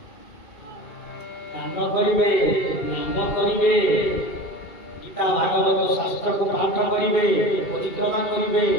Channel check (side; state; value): right; late; 2.7 ms